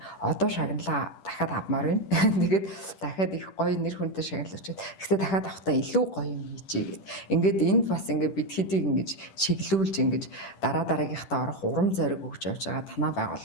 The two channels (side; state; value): right; late; 10 ms